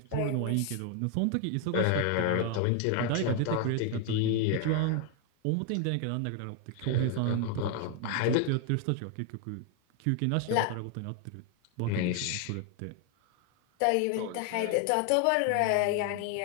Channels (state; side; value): different; both; correlation 0.00